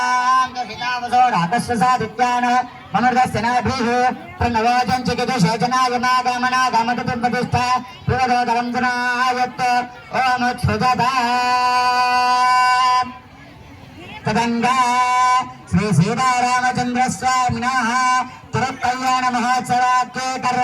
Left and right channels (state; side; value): identical; both; correlation 1.00